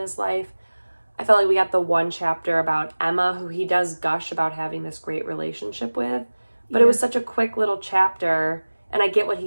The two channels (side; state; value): both; inverted; correlation -1.00